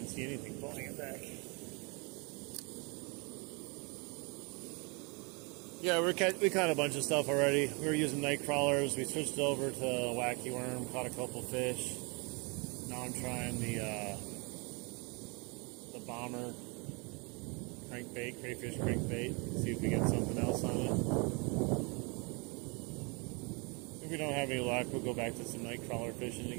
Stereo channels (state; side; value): quieter; left; 31.3 dB